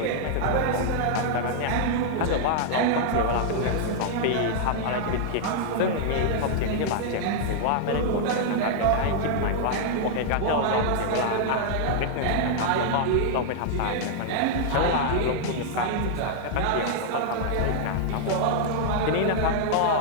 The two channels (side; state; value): both; different; correlation -0.01